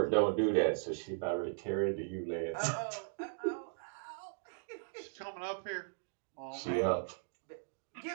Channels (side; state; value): left; silent; digital silence